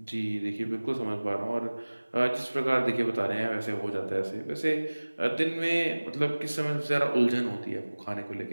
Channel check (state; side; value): inverted; both; correlation -1.00